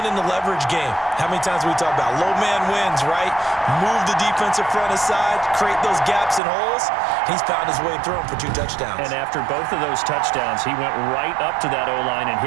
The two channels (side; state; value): left; drops out; at 6.4 s